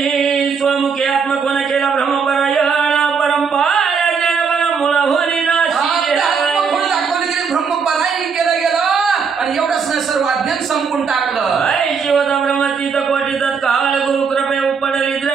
स्वमुखी आत्मकोन केला ब्रह्मपरायण परंपरा जन मुळा होली दाखवले गेले, ब्रह्मपरायण केलं गेलं आणि एवढंच नाही सर्व अज्ञान संपून टाकलं. शिवता ब्रह्मतीत कोटी तत्काळ गुरु कृपे उपडली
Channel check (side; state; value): left; quieter; 5.9 dB